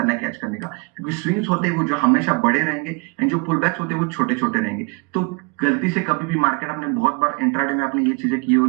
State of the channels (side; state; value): left; quieter; 31.5 dB